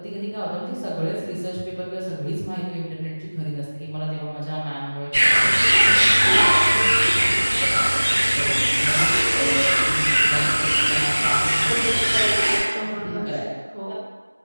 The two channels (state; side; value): inverted; both; correlation -1.00